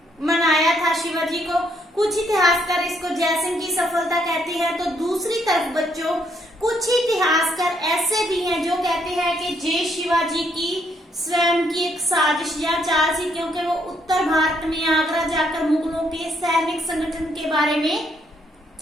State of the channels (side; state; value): both; normal; correlation 0.72